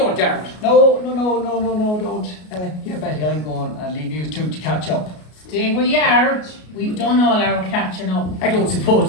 Dermot? No, don't. Here, Betty, I'm going and leave you two to catch up. Stay where you are. We've done all our catching up. I don't suppose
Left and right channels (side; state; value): right; late; 33 ms